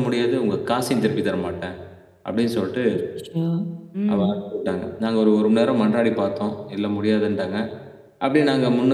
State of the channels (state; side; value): identical; both; correlation 1.00